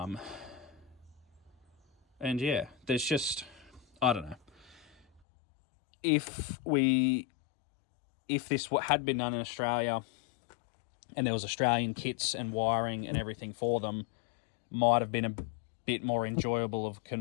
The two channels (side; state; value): right; drops out; at 5.2 s